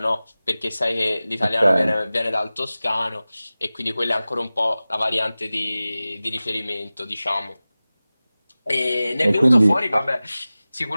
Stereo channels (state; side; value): inverted; both; correlation -0.97